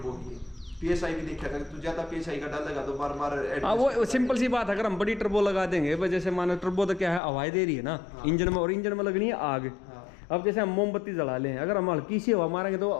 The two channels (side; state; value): right; drops out; at 7.2 s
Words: की, पीएसआई भी देखा था, तू ज्यादा पीएसआई का डालेगा तो बार बार। वो सिंपल सी बात है, अगर हम बड़ी टर्बो लगा देंगे, जैसे मानो टर्बो तो क्या है, हवाएं दे रही है ना इंजन में, और इंजन में लगनी है आग। अब जैसे हम मोमबत्ती जला लें, अगर हम हल्की सी हवा मारेंगे तो